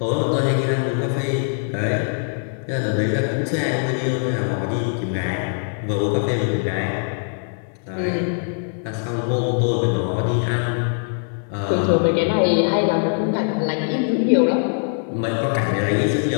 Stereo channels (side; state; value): right; silent; 56 dB below the other